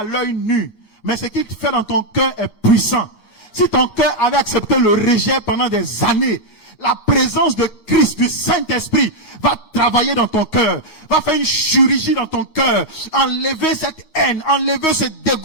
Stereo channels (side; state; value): right; late; 9.5 ms